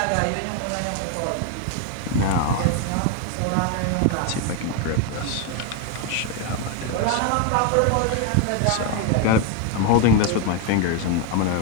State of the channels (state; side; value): different; both; correlation 0.01